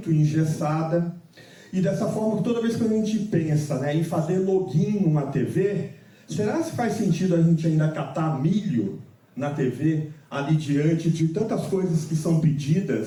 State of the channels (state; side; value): identical; both; correlation 1.00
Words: engessada, e dessa forma, toda vez que a gente pensa, né, em fazer login numa TV, será que faz sentido a gente ainda catar milho na TV, ali diante de tantas coisas que são